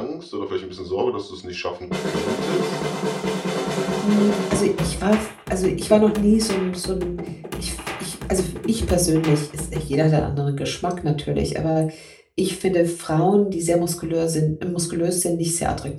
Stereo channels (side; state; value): both; identical; correlation 1.00